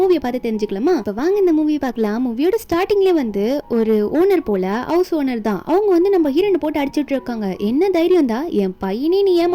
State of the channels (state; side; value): identical; both; correlation 1.00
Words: பார்த்து தெரிஞ்சுக்கலாமா? இப்போ வாங்க இந்த மூவியை பார்க்கலாம். மூவியோட ஸ்டார்டிங்லேயே வந்து ஒரு ஓனர் போல, ஹவுஸ் ஓனர் தான், அவங்க வந்து நம்ம ஹீரோனை போட்டு அடிச்சுட்டு இருக்காங்க. என்ன தைரியம் தான் என் பையனே நீ